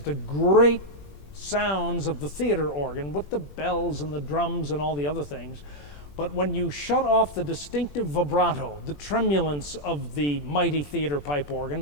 great sounds of the theater organ with the bells and the drums and all the other things, but when you shut off the distinctive vibrato, the tremulence of the mighty theater pipe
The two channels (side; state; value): right; late; 21 ms